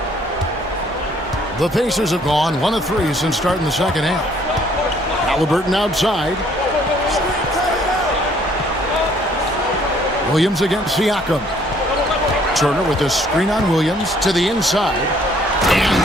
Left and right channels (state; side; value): normal; both; correlation 0.62